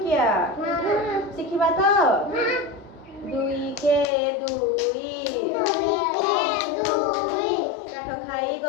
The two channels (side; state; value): right; drops out; at 4.0 s